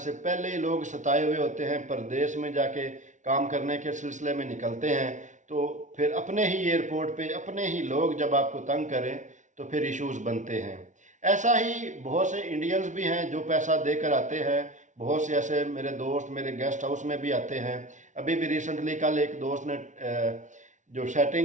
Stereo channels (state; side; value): late; left; 0.36 ms